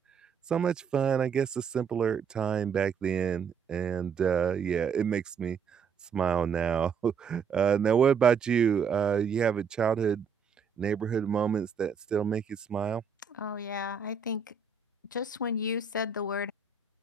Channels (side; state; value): left; quieter; 6.2 dB